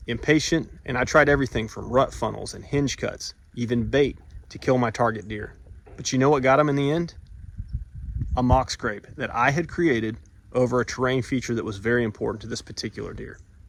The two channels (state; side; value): identical; both; correlation 1.00